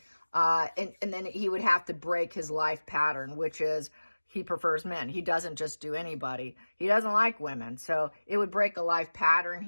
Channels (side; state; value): both; inverted; correlation -1.00